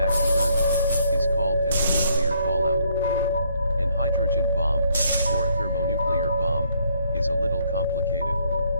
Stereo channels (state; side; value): inverted; both; correlation -0.68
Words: to Earth, is called as a nuclear fallout. An hydrogen bomb, or a thermonuclear bomb, is a little complicated.